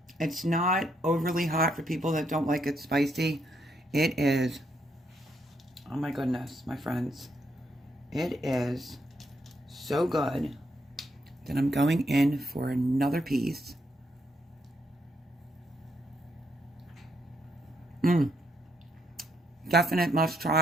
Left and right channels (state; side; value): normal; both; correlation 0.76